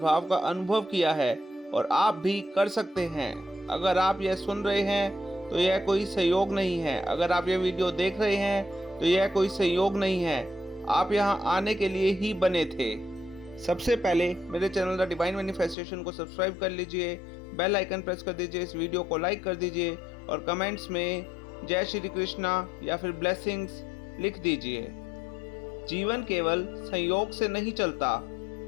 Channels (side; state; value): right; drops out; at 15.8 s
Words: का अनुभव किया है और आप भी कर सकते हैं। अगर आप यह सुन रहे हैं तो यह कोई संयोग नहीं है। अगर आप यह वीडियो देख रहे हैं तो यह कोई संयोग नहीं है। आप यहाँ आने के लिए ही बने थे। सबसे पहले मेरे चैनल द डिवाइन मैनिफेस्टेशन को सब्सक्राइब कर लीजिए, बेल आइकन प्रेस कर दीजिए, इस वीडियो को लाइक कर दीजिए और कमेंट्स में जय श्री कृष्णा या फिर ब्लेसिंग्स लिख दीजिए। जीवन केवल संयोग से नहीं चलता,